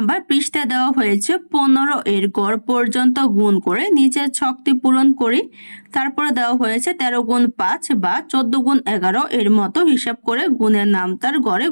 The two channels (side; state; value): both; inverted; correlation -1.00